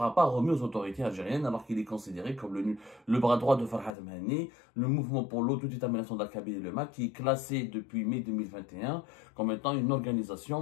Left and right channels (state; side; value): drops out; right; at 4.0 s